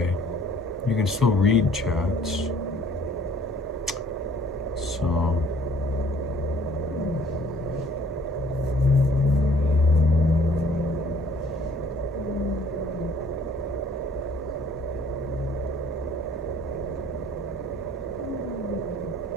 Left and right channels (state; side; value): normal; both; correlation 0.57